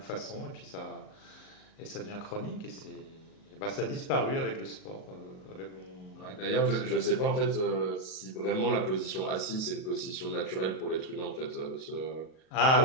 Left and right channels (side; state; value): right; late; 38 ms